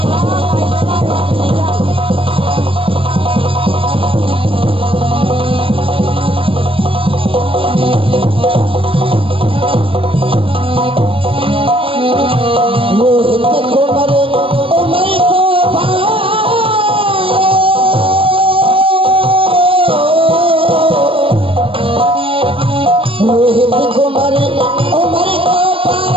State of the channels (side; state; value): left; late; 0.26 ms